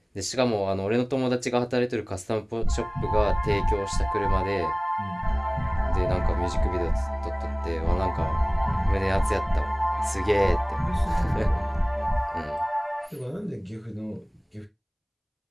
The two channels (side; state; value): both; identical; correlation 1.00